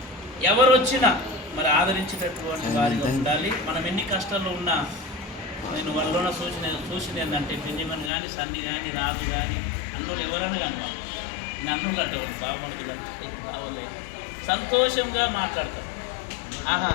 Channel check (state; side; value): drops out; right; at 8.1 s